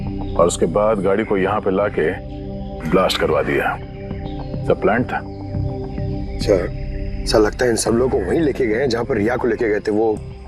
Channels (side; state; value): both; identical; correlation 1.00